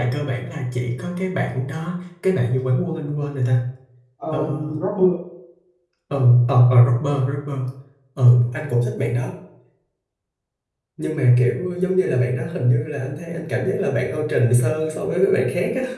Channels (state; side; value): identical; both; correlation 1.00